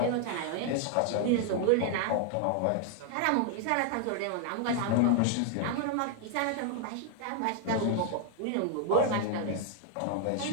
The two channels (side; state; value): both; different; correlation 0.00